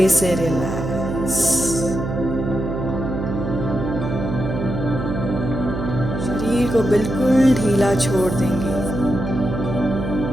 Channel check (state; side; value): noise; right; hum, 4 dB below the sound